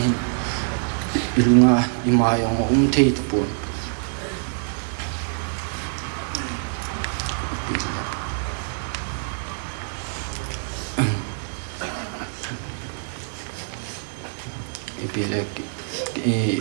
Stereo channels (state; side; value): silent; left; digital silence